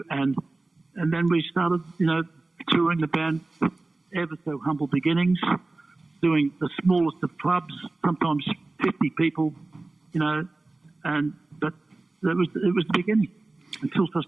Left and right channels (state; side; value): quieter; left; 3.2 dB